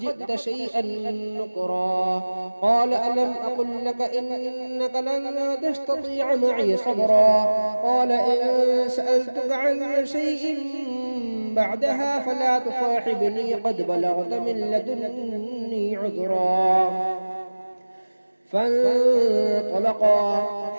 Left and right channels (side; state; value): both; inverted; correlation -1.00